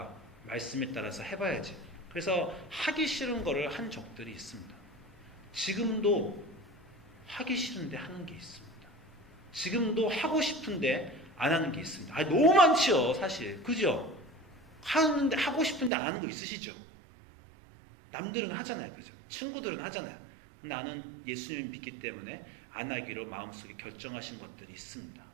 말씀에 따라서 해봐야지. 그래서 하기 싫은 거를 한 적들이 있습니다. 지금도 하기 싫은데 하는 게 있습니다. 지금도 하고 싶은데 안 하는 게 있습니다. 너무 많지요, 사실. 그죠? 하고 싶은데 안 하는 거 있으시죠? 남들은 하잖아요, 그죠? 친구들은 하잖아요. 나는 예수님을 믿기 때문에 안 하기로 마음속에 결정하신 것들이 있습니다.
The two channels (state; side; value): drops out; left; at 15.9 s